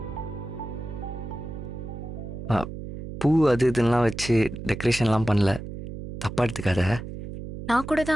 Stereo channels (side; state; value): right; noise; hum, 9 dB below the sound